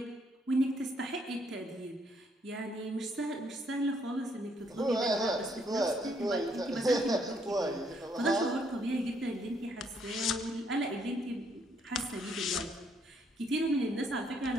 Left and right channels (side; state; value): both; normal; correlation 0.70